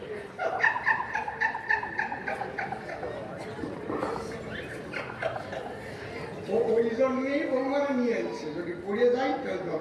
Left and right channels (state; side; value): identical; both; correlation 1.00